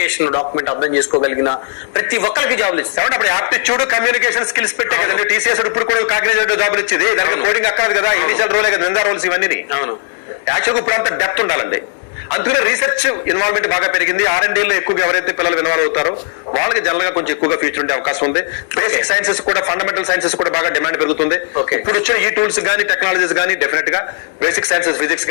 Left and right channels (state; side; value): silent; right; 64 dB below the other